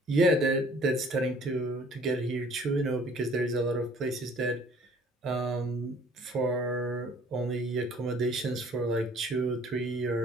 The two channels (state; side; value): normal; both; correlation 0.55